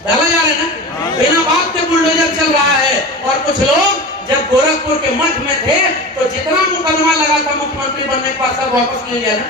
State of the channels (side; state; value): both; normal; correlation 0.31